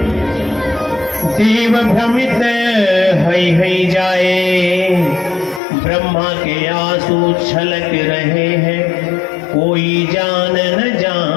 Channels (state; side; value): drops out; right; at 5.6 s